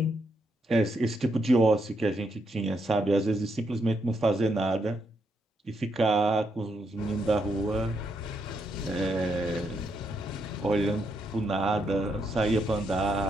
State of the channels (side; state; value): both; normal; correlation 0.79